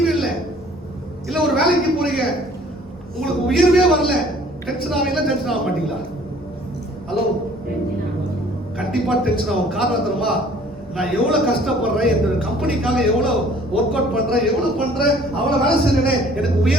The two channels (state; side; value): normal; both; correlation 0.54